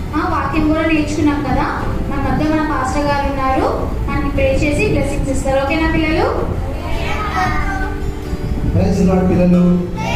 వాక్యం కూడా నేర్చుకున్నాం కదా. మన మధ్య మన పాస్టర్ గారు ఉన్నారు, మనకి ప్రే చేసి బ్లెస్సింగ్స్ ఇస్తారు. ఓకేనా పిల్లలు? ప్రైజ్ లార్డ్ పిల్లలు.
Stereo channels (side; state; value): both; identical; correlation 1.00